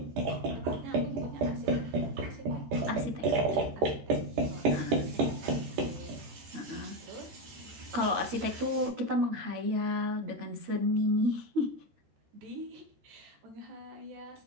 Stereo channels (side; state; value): left; late; 13 ms